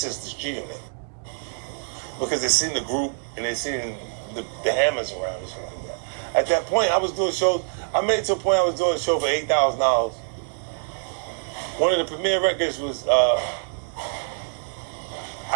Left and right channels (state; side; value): silent; left; digital silence